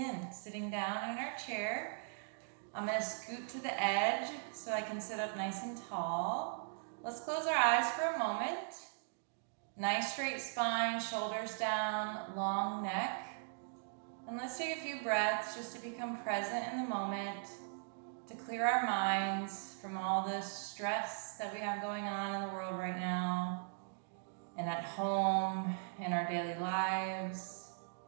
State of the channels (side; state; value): left; silent; digital silence